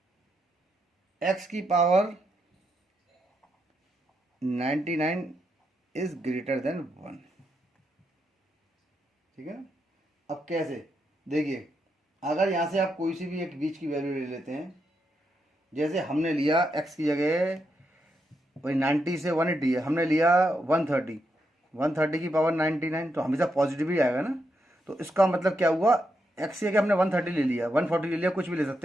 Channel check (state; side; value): normal; both; correlation 0.82